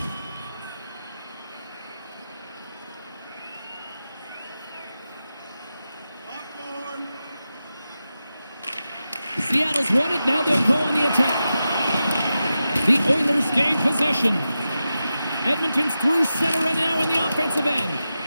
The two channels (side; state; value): both; inverted; correlation -0.91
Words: Seattle's won it, now they'll go on the attack. The Oilers gain possession. Edmonton's through center and now in the offensive end.